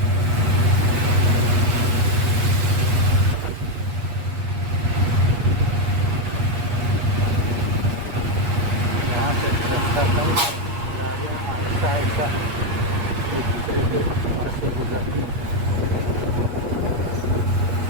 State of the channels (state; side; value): late; left; 8.4 ms